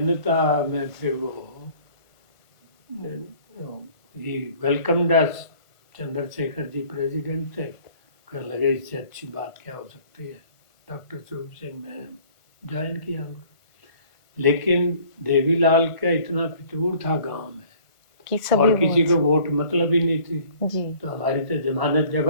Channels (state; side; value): late; right; 1.4 ms